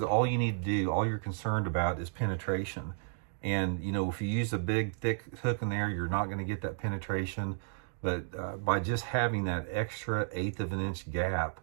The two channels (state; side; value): silent; left; digital silence